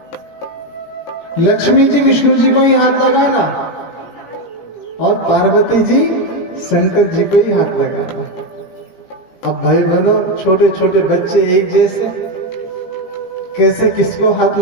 लक्ष्मी जी विष्णु जी को ही हाथ लगाना और पार्वती जी शंकर जी को ही हाथ लगाना। अब भाई बहनों छोटे छोटे बच्चे एक जैसे, कैसे किसको हाथ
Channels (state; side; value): late; right; 17 ms